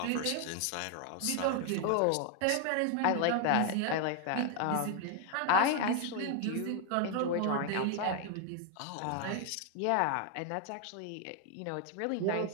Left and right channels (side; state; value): both; different; correlation 0.01